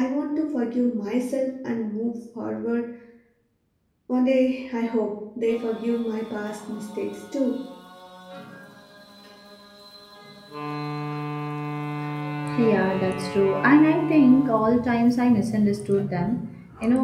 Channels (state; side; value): identical; both; correlation 1.00